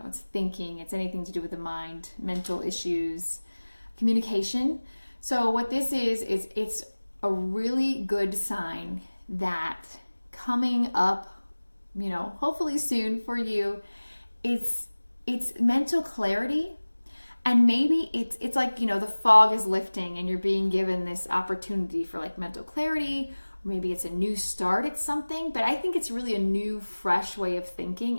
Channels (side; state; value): both; inverted; correlation -1.00